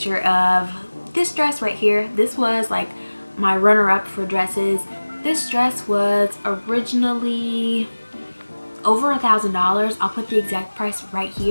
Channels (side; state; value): both; inverted; correlation -1.00